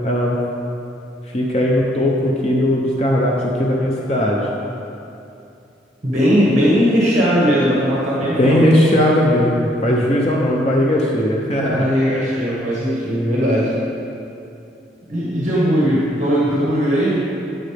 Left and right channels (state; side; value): normal; both; correlation 0.68